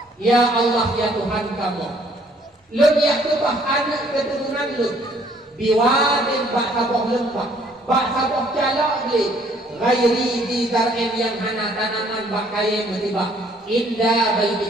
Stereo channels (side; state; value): both; normal; correlation 0.62